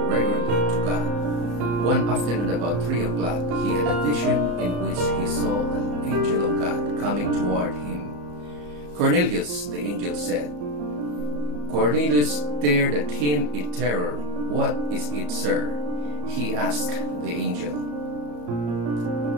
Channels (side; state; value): left; late; 34 ms